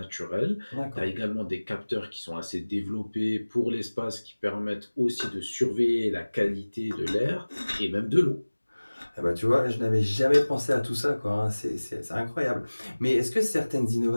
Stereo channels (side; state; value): both; inverted; correlation -1.00